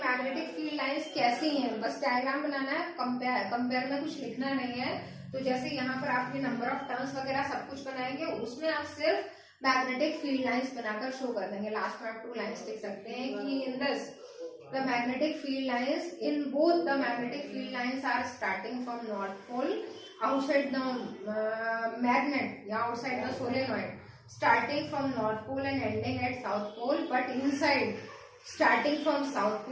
मैग्नेटिक फील्ड लाइंस कैसी हैं, बस डायग्राम बनाना है, कंपेयर में कुछ लिखना नहीं है। तो जैसे यहाँ पर आपने नंबर ऑफ टर्न्स वगैरह सब कुछ बनाएंगे, उसमें आप सिर्फ मैग्नेटिक फील्ड लाइंस बनाकर शो कर देंगे। लास्ट में आप 2 लाइंस लिख सकते हैं कि in this the magnetic field lines, in both the magnetic field lines are starting from north pole outside the magnet, yeah, outside the solenoid, starting from north pole and ending at south pole, but inside starting from south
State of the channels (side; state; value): both; identical; correlation 1.00